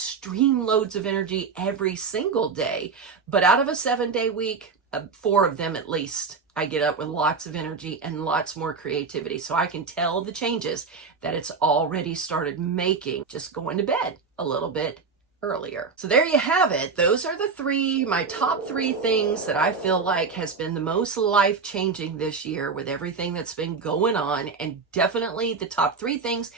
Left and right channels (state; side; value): quieter; left; 5.0 dB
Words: loads of energy every single day. But out of a 7-day week, 4 of them at least, I get up with lots of energy and lots more creativity. So I can tell the changes that it's already started making just going to bed a little bit earlier. So there you have it. Those are my top 3 things that I feel like has been the most life-changing this year with everything that's been going on, and definitely the top 3 things